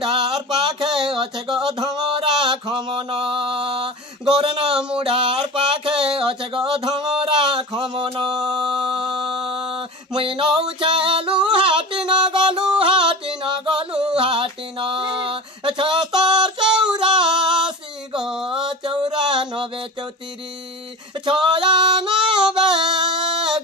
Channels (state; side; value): normal; both; correlation 0.31